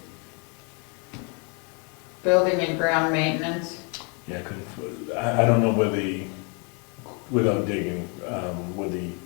building and ground maintenance. Yeah, I don't know where without digging, where the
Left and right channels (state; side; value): quieter; right; 35.3 dB